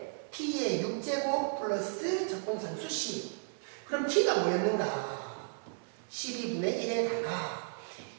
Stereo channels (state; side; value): silent; left; 55 dB below the other